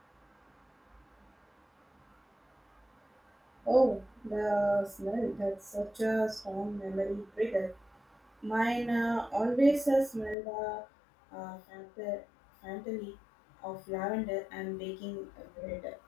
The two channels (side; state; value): right; drops out; at 10.4 s